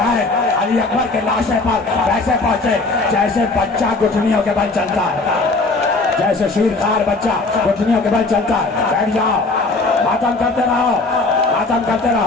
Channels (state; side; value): quieter; right; 3.4 dB